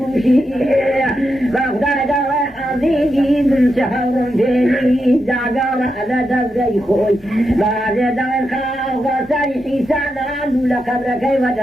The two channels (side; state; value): both; normal; correlation 0.86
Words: شيبي بغداد وحزيزي من شهر فيني زعقار على دزي خوي بعد دار خاوة سريحي سنان لقبرك